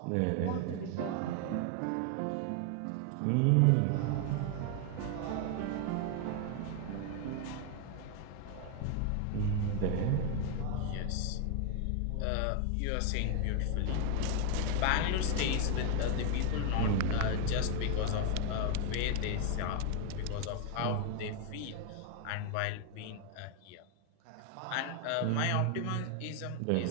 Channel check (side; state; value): both; different; correlation 0.00